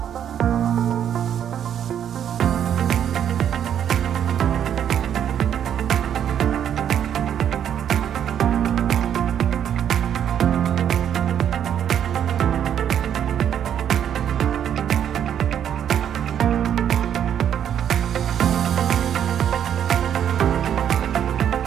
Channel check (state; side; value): quieter; left; 9.4 dB